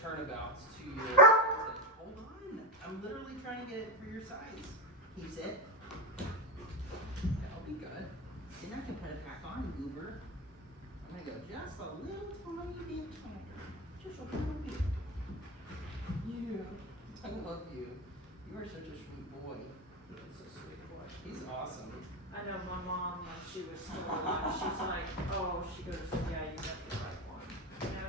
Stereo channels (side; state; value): both; normal; correlation 0.14